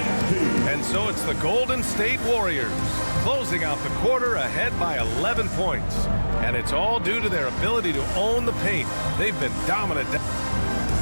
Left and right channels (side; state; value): both; inverted; correlation -1.00